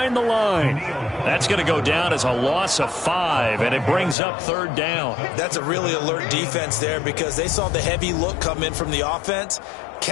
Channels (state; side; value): drops out; right; at 4.2 s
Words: the line. That's going to go down as a loss of 5, and it brings up 3rd down. That's a really alert defense there because they saw the heavy look come in from the offense,